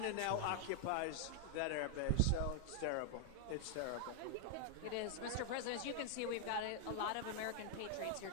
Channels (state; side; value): different; both; correlation 0.00